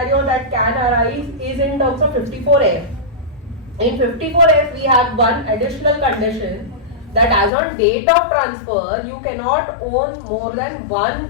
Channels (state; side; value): drops out; right; at 7.5 s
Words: that can arise is in terms of 54F. In 54F, we have one additional condition that as on date of transfer, you cannot own more than